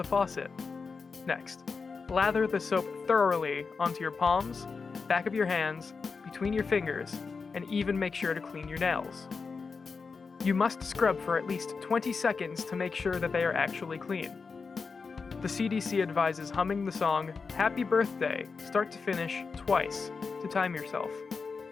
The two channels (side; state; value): right; quieter; 4.9 dB